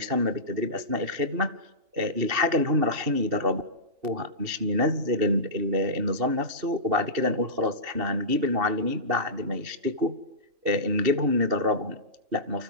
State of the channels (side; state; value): left; late; 2.7 ms